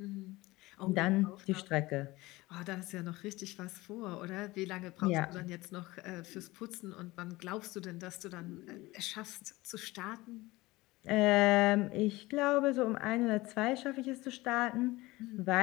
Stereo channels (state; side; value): quieter; right; 20.1 dB